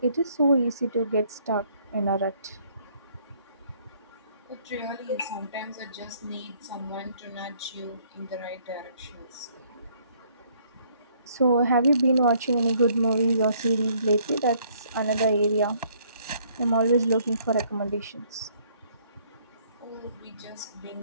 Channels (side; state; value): both; inverted; correlation -0.64